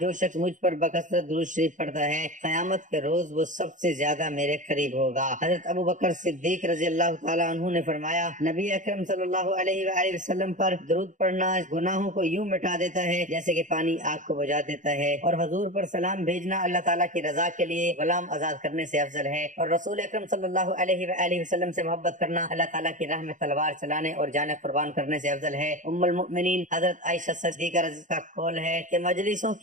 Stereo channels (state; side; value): late; left; 0.37 ms